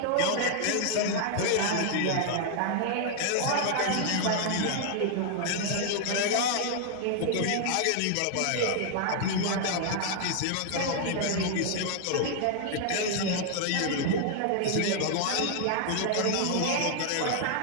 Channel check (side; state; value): both; different; correlation 0.00